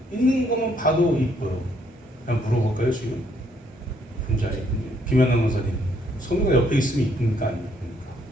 있는 것만 봐도 이뻐요. 그냥 물어볼까요 지금? 혼자 이쁜지 김연아 원사님 소미가 옆에 있으면 이쁩니까 안 이쁩니까?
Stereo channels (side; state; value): both; normal; correlation 0.69